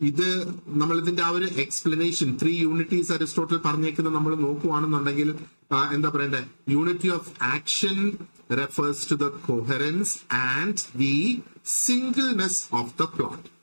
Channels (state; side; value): inverted; both; correlation -1.00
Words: നമ്മൾ ഇതിന്റെ ആ ഒരു എക്സ്പ്ലനേഷൻ, ത്രീ യൂണിറ്റീസ് അരിസ്റ്റോട്ടിൽ പറഞ്ഞേക്കുന്നത് നമ്മൾ നോക്കുവാണെന്നുണ്ടെങ്കിൽ എന്താ പറയണ്ടേ, unity of action refers to the coherence and the singleness of the plot.